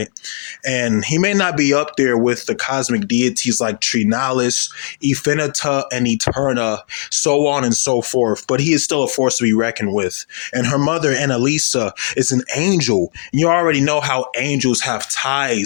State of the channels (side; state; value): right; silent; 68 dB below the other